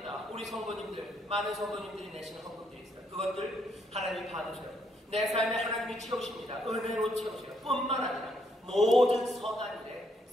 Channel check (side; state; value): both; normal; correlation 0.73